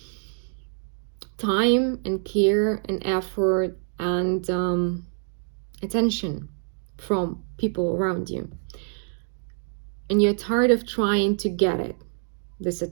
time and care and effort and attention from people around you. And you're tired of trying to get this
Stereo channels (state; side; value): silent; left; digital silence